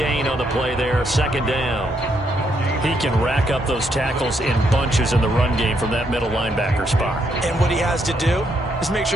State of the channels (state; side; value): normal; both; correlation 0.75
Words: on the play there, 2nd down. He can rack up those tackles in bunches in the run game from that middle linebacker spot. And what he has to do is make